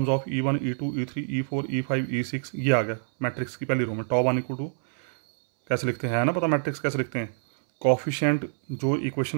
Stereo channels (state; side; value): silent; left; 61 dB below the other